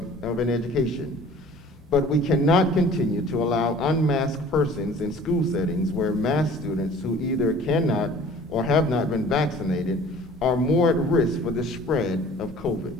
an education, but we cannot continue to allow unmasked persons in school settings where masked students who either cannot or have not been vaccinated are more at risk for the spread of COVID.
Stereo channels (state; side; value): normal; both; correlation 0.48